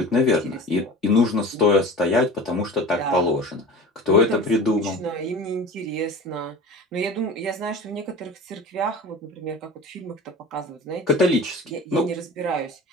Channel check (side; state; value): both; normal; correlation 0.36